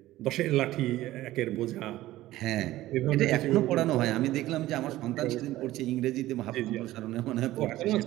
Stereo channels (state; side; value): quieter; left; 15.9 dB